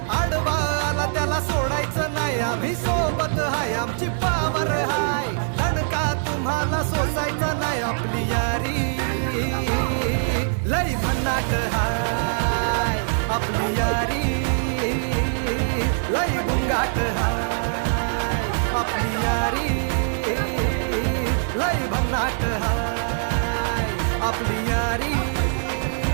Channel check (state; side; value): silent; left; digital silence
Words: आडवा आला त्याला सोडायचं नाही. आम्ही सोबत हाय आमची पावर हाय, दणका तुम्हाला सोसायचा नाही. आपली यारी लय भन्नाट हाय, आपली यारी लय बुंगाट हाय. आपली यारी लय भन्नाट हाय, आपली यारी